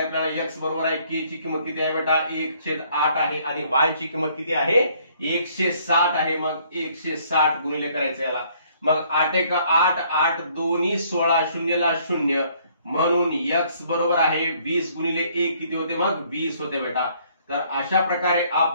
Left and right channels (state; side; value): inverted; both; correlation -0.63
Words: आपल्याला. एक्स बरोबर आहे के ची किंमत किती आहे बेटा? 1/8 आहे. आणि वाय ची किंमत किती आहे? 160 आहे. मग 160 गुणिले करायचं याला. मग 8 एका 8, 8 दोन्ही 16, 0 ला 0. म्हणून एक्स बरोबर आहे 20 गुणिले 1 किती होते? मग 20 होते बेटा. तर अशा प्रकारे